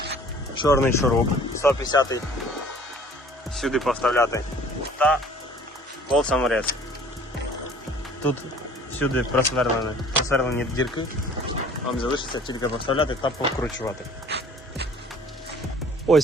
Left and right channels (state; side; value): normal; both; correlation 0.51